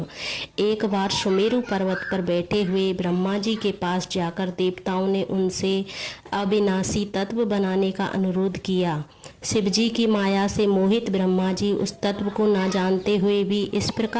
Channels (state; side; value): identical; both; correlation 1.00